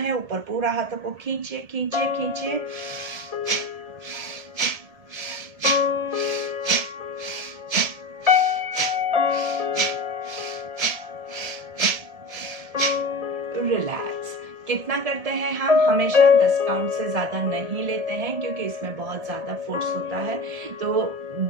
ऊपर पूरा हाथों को खींचिए खींचिए खींचिए। रिलैक्स। कितना करते हैं हम? हमेशा 10 काउंट से ज्यादा नहीं लेते हैं क्योंकि इसमें बहुत ज्यादा फोर्स होता है। तो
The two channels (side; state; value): left; late; 1.7 ms